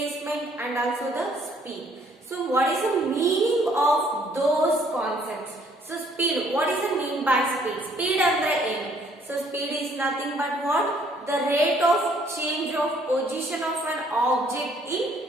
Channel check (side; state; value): both; normal; correlation 0.63